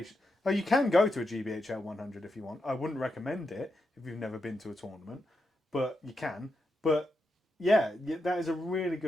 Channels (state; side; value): normal; both; correlation 0.85